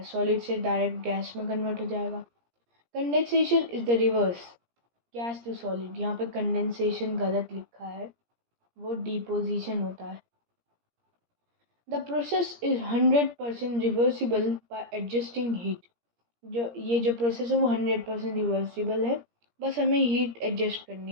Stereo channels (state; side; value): late; left; 17 ms